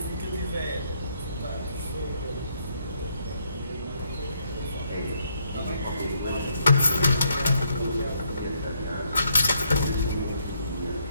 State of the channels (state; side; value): inverted; both; correlation -0.73